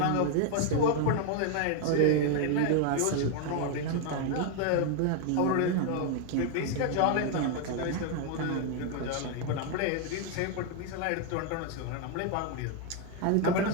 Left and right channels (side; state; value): both; different; correlation 0.01